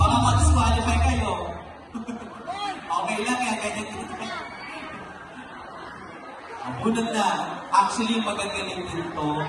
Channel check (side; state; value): both; identical; correlation 1.00